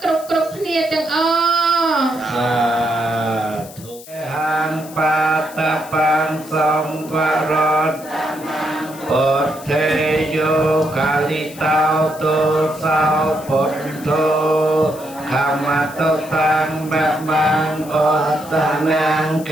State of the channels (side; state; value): left; noise; hiss, 18 dB below the sound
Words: គ្រប់គ្នាទាំងអស់ហាងបាតបាងសំវរតពុទ្ធេយោកាលិតោទុសោពុទ្ធោខមតតាំងបបាងអតនាងក